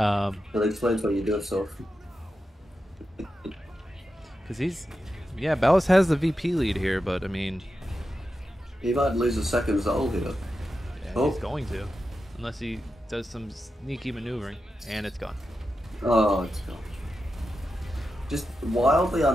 That explains why you do it so often. Because Balizk has the VP lead here, but I mean, He might lose a second Zol here. yeah, he's going to, unless he does some sneaky maneuvering, and it's gone. Oh, it's gone. Just wildly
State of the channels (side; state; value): both; normal; correlation 0.90